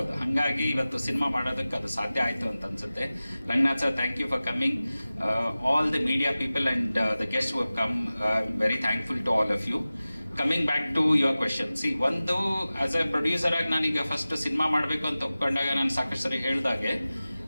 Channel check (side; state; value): both; inverted; correlation -0.97